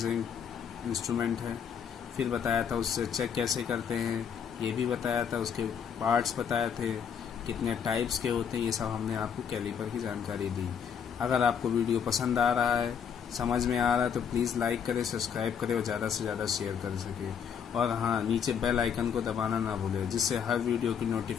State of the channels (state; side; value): quieter; right; 7.5 dB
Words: इंस्ट्रूमेंट है। फिर बताया था उससे चेक कैसे करते हैं, ये भी बताया था। उसके पार्ट्स बताए थे, कितने टाइप्स के होते हैं, ये सब हमने आपको कैलिपर की जानकारी दी। अगर आपको वीडियो पसंद आ रहा है, समझ में आ रहा है तो प्लीज़ लाइक करें, सब्सक्राइब करें और ज़्यादा से ज़्यादा शेयर कर सके। और हाँ, नीचे बेल आइकन को दबाना ना भूलें जिससे हर वीडियो की